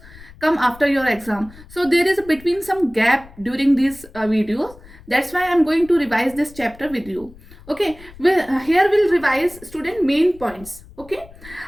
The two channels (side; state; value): left; noise; rumble, 21 dB below the sound